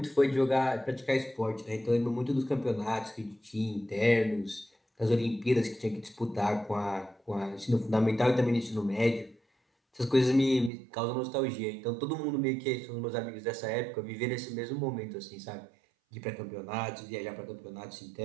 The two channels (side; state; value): left; drops out; at 10.7 s